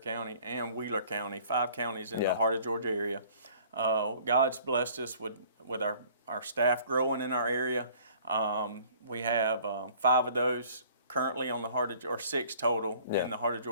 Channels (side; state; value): both; inverted; correlation -0.54